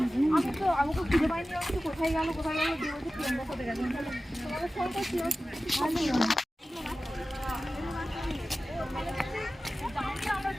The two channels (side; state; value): both; normal; correlation 0.95